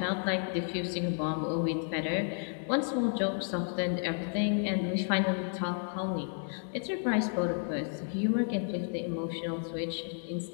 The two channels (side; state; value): right; silent; 56 dB below the other